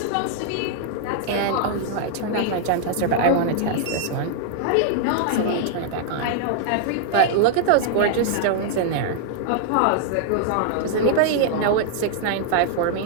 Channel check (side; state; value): both; different; correlation -0.01